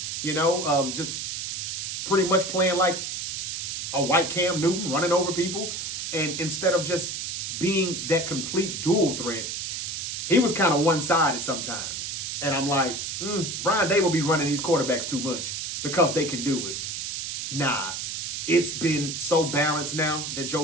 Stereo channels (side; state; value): right; noise; hiss, 4 dB below the sound